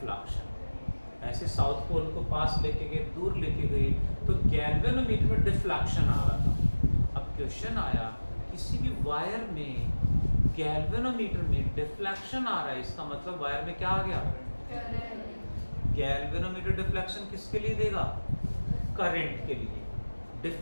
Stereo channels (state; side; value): inverted; both; correlation -1.00